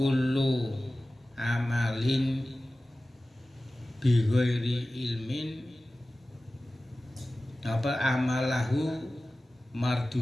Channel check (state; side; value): normal; both; correlation 0.96